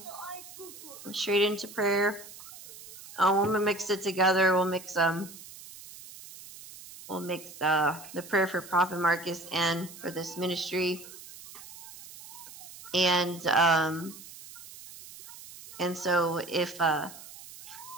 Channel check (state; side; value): noise; right; hiss, 16 dB below the sound